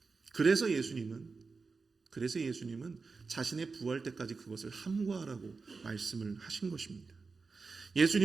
그래서 예수님은 자신의 부활 때까지 그것을 함구하라고 말씀을 하신 것입니다.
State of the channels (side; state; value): left; quieter; 4.4 dB